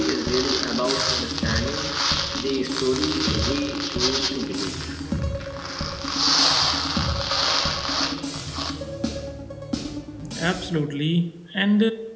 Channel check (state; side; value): identical; both; correlation 1.00